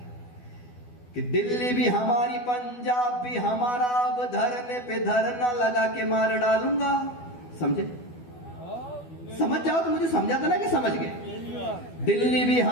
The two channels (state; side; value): late; right; 12 ms